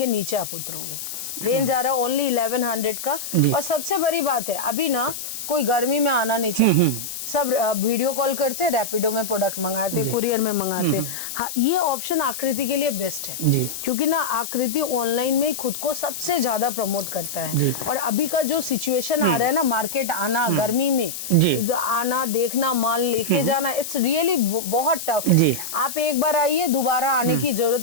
नीचे आप उतरोगे। रेंज आ रहा है ओनली 1100 का। और सबसे बड़ी बात है, अभी ना कोई गर्मी में आना नहीं चाहिए, सब वीडियो कॉल करते, रैपिडो में प्रोडक्ट मंगाते, कुरियर में मंगाते। हाँ, ये ऑप्शन आकृति के लिए बेस्ट है, जी। क्योंकि ना आकृति ऑनलाइन में खुद को सबसे ज्यादा प्रमोट करता है। और अभी का जो सिचुएशन आ रहा है ना, मार्केट आना गर्मी में, जी। आना, देखना, माल लेके जाना, इट्स रियली बहुत टफ है। जी। आप एक बार आइए, दोबारा आने की जरूरत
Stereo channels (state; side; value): noise; left; hiss, 7 dB below the sound